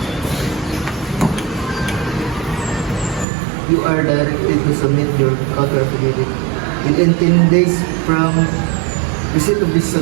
You are directed to submit your counter affidavit within 10 days from receipt of this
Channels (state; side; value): drops out; left; at 3.2 s